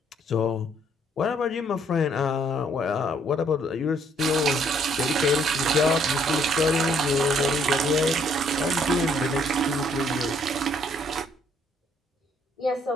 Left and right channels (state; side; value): normal; both; correlation 0.66